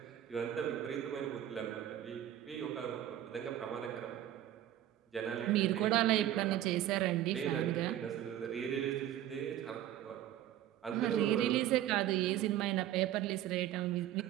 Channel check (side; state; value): left; quieter; 12.3 dB